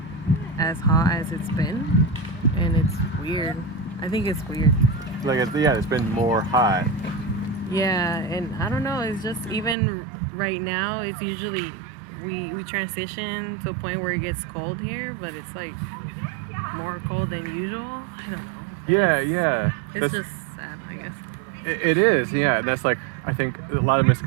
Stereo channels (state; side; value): drops out; left; at 9.8 s